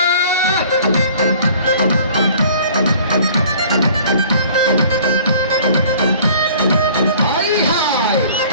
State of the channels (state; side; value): inverted; both; correlation -0.51